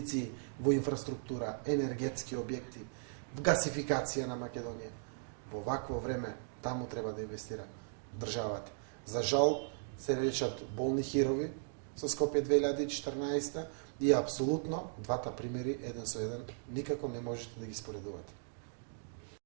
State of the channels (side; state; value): left; silent; digital silence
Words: во инфраструктура, енергетски објекти, гасификација на Македонија. Во вакво време таму треба да инвестира државата. За жал се речат болни хирови со Скопје 2014 и апсолутно двата примери еден со еден никако не можете да ги споредувате.